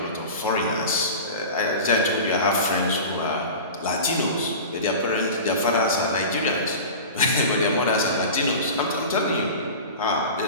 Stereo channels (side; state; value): both; inverted; correlation -0.33